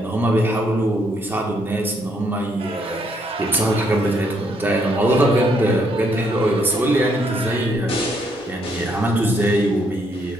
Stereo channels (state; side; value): normal; both; correlation 0.72